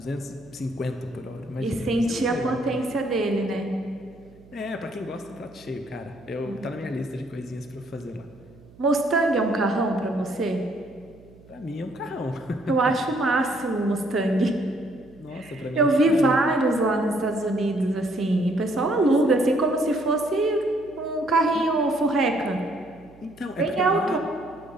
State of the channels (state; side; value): noise; right; hum, 24 dB below the sound